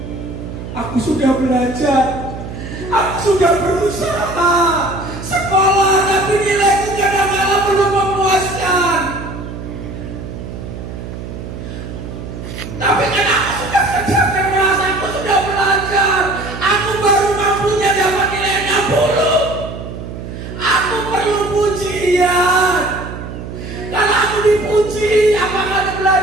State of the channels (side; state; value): right; noise; hum, 10 dB below the sound